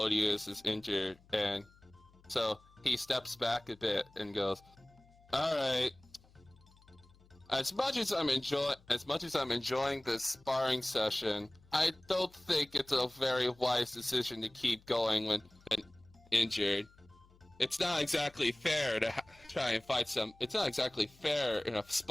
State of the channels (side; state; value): left; noise; hum, 28 dB below the sound